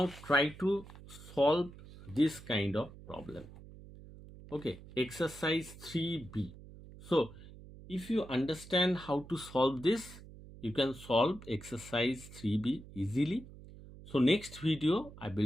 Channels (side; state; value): right; noise; hum, 17 dB below the sound